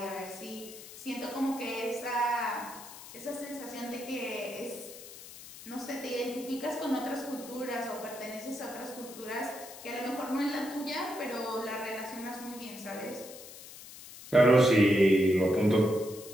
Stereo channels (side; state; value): left; noise; hiss, 15 dB below the sound